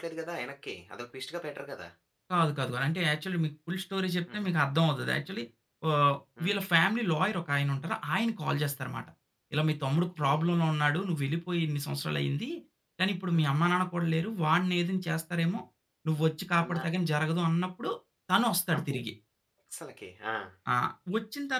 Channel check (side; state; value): both; identical; correlation 1.00